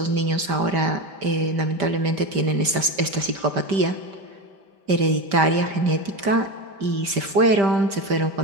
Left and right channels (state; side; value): late; left; 5.1 ms